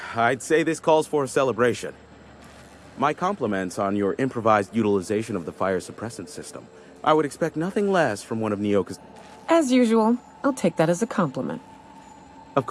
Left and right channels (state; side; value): identical; both; correlation 1.00